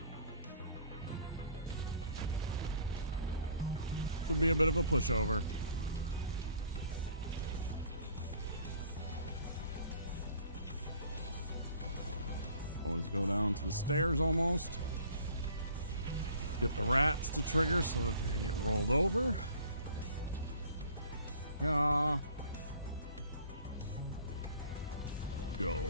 Should be a bit of a pushover. Always go down to the stairs almost. Get the rats to trigger so that they get rolled over. Yeah.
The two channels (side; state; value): both; inverted; correlation -0.53